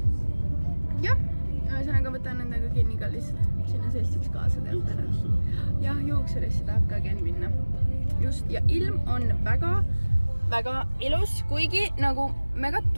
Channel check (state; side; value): inverted; both; correlation -1.00